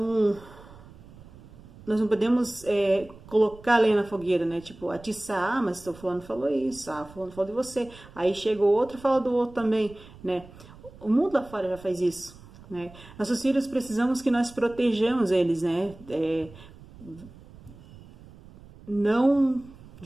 nós não podemos colocar a lenha na fogueira, né? Tipo, atiçar, mas o fulano falou isso, fulano falou de você. Aí chega o outro e fala do outro também, né? O mundo lá fora já faz isso, né? Nossos filhos precisamos que nós protejamos eles, né? Não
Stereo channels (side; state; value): right; noise; rumble, 20 dB below the sound